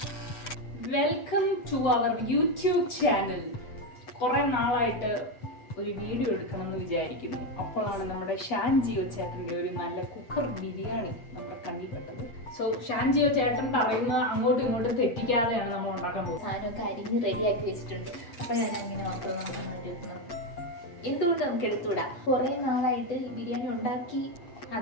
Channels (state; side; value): late; right; 8.5 ms